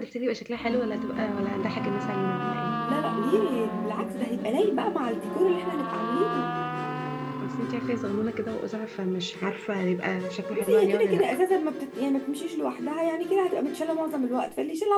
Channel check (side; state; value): both; identical; correlation 1.00